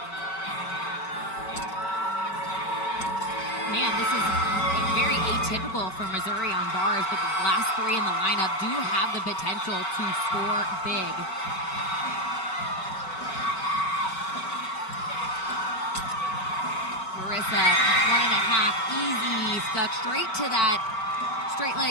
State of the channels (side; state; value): right; late; 5.3 ms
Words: man, this is very atypical for Missouri on bars, but the last three in the lineup do have the potential to score big. Marissa, 1.5, easy, stuck straight to that straight leg